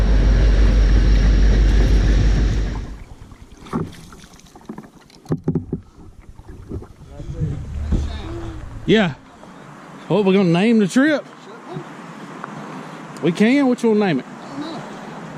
Yeah. What, we're gonna name the trip? We can? Which one name it? I don't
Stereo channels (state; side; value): identical; both; correlation 1.00